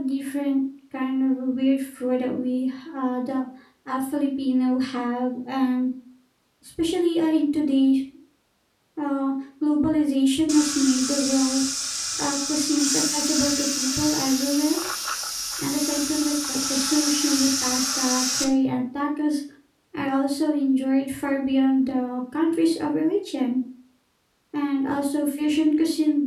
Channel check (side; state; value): both; identical; correlation 1.00